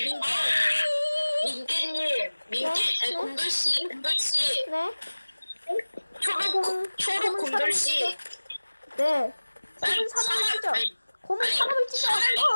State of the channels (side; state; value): both; inverted; correlation -1.00